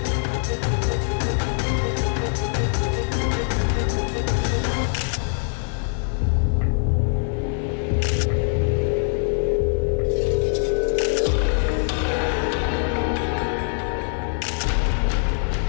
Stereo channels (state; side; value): silent; right; 57 dB below the other